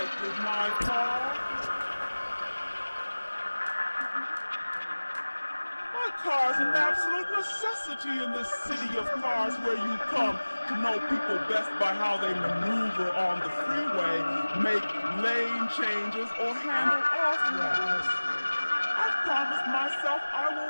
with my car. My car's an absolute necessity in this city of cars where you come to know people best by how they maneuver on the freeway, make lane changes, or handle off-ramps. I've promised myself I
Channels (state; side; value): inverted; both; correlation -1.00